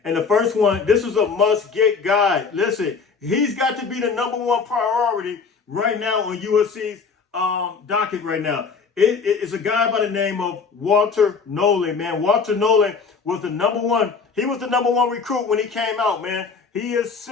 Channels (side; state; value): right; quieter; 5.2 dB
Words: And the first one, this is a must-get guy. Listen, he's got to be the #1 priority right now on USC's docket right now. It's a guy by the name of Walter Nolan, man. Walter Nolan was the #1. He was the #1 recruit when he came out, man. He is